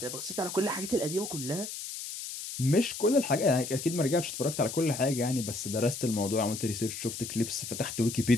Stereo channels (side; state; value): left; noise; hiss, 8 dB below the sound